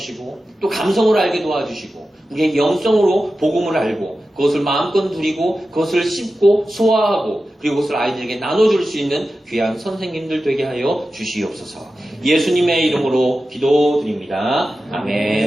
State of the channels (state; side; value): normal; both; correlation 0.93